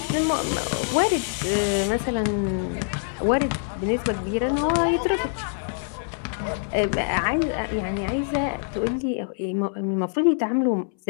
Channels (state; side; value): silent; right; 62 dB below the other